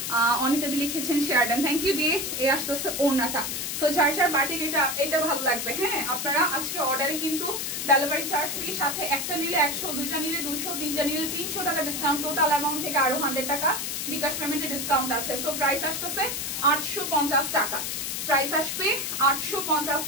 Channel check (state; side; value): noise; left; hiss, 3 dB below the sound